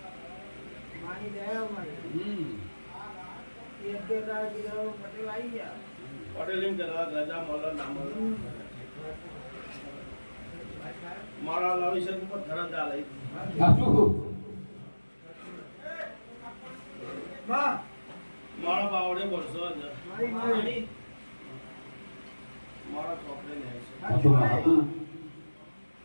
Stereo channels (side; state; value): both; inverted; correlation -1.00